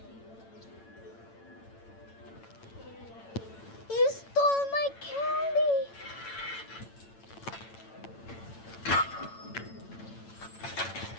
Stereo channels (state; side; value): late; right; 8.9 ms